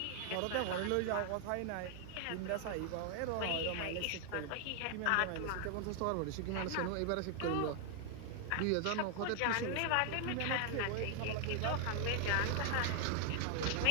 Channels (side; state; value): both; different; correlation 0.00